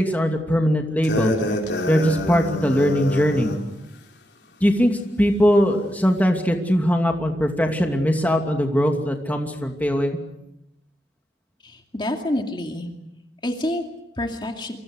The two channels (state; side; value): normal; both; correlation 0.85